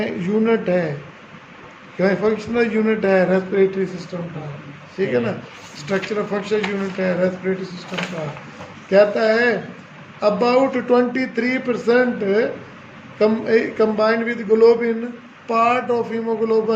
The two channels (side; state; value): both; identical; correlation 1.00